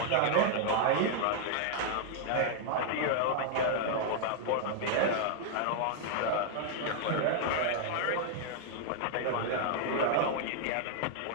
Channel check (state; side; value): different; both; correlation 0.00